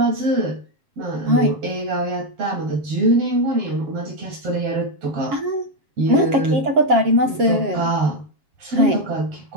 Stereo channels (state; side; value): late; left; 7.4 ms